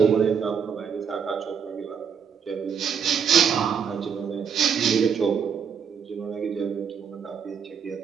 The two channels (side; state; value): left; quieter; 7.0 dB